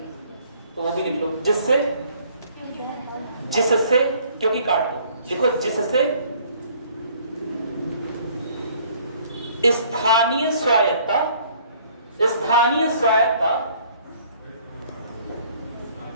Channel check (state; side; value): inverted; both; correlation -0.58